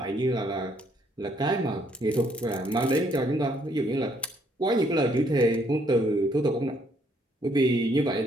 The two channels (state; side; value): normal; both; correlation 0.68